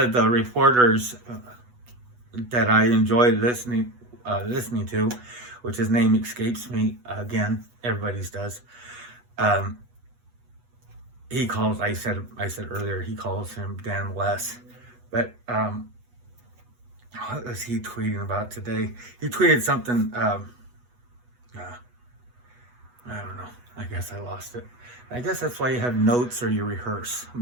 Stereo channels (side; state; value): left; late; 8.2 ms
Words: the reporters that I enjoyed listening to, which his name escapes me again. Everybody's does. He calls. I said earlier. He calls him Dan West. But what was he tweeting about today? He tweeted something. I don't know. I guess I lost it. I guess that's why you have notes or you rehearse.